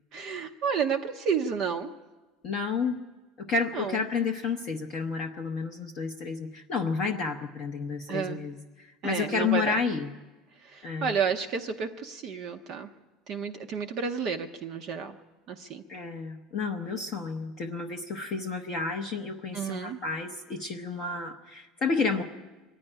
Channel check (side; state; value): both; normal; correlation 0.35